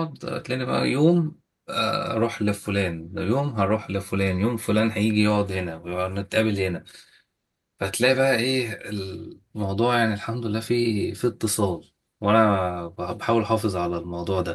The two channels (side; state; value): both; identical; correlation 1.00